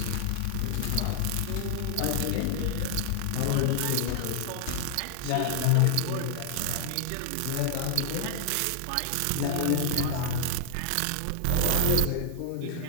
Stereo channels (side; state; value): both; different; correlation 0.00